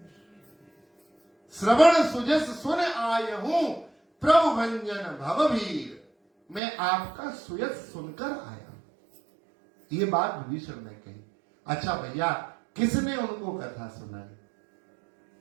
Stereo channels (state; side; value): drops out; left; at 6.6 s